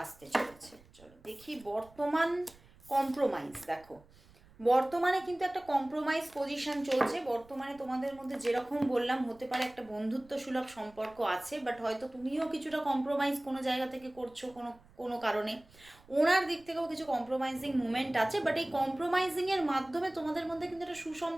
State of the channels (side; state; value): right; noise; rumble, 26 dB below the sound